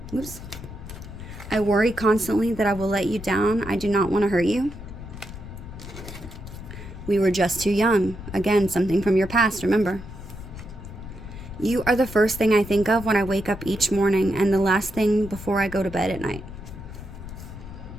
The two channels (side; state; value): left; noise; rumble, 12 dB below the sound